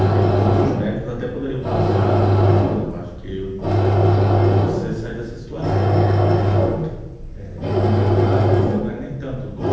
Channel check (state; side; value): identical; both; correlation 1.00